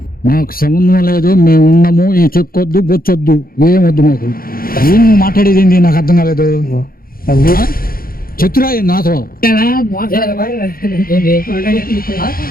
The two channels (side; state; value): right; late; 0.42 ms